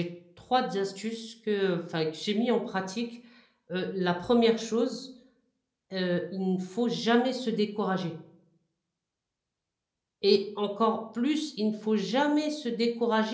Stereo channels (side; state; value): both; identical; correlation 1.00